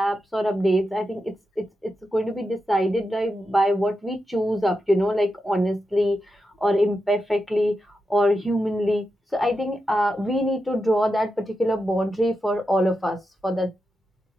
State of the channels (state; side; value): normal; both; correlation 0.88